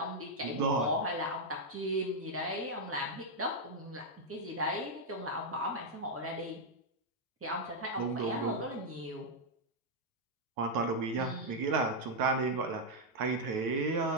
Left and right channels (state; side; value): normal; both; correlation -0.02